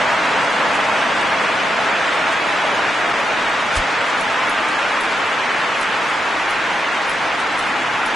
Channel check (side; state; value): both; normal; correlation 0.84